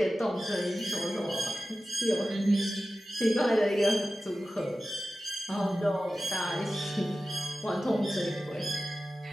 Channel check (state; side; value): normal; both; correlation 0.95